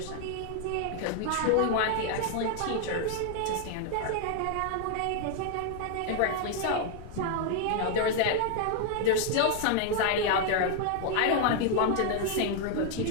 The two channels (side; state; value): both; different; correlation 0.00